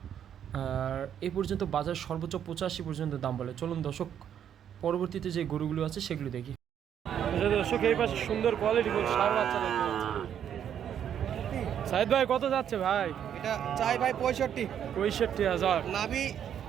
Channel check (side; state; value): left; quieter; 9.3 dB